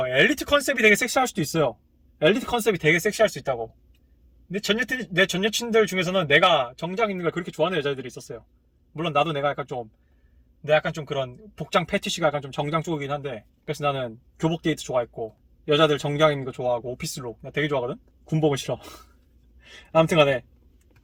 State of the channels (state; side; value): identical; both; correlation 1.00